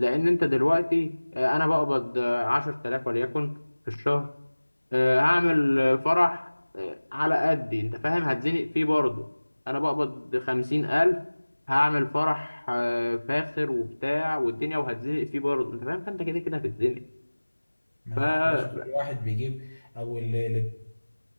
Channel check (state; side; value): inverted; both; correlation -1.00